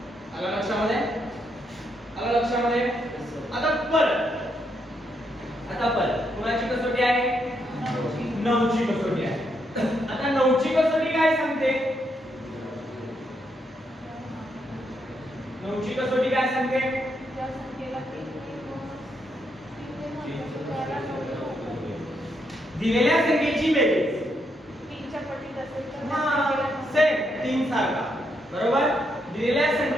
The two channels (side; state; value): both; normal; correlation 0.78